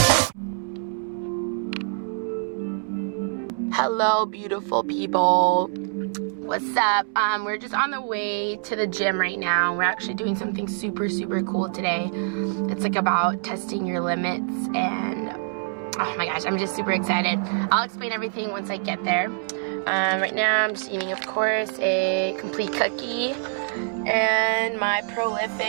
Hello, beautiful people. What's up? We're just on the way to the gym right now. We're actually doing something super cool today. It's like about testing your limits, and oh my gosh, I'm just super excited. I'll explain everything once I get there. Right now I'm just eating, of course, a complete cookie, and my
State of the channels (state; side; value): silent; left; 62 dB below the other